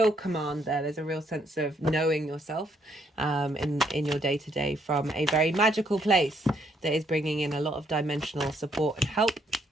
command there. There's a real sense of knowing yourself in your day-to-day from a very magical place that is bringing in a lot of dimensional support and help.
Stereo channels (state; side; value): normal; both; correlation 0.71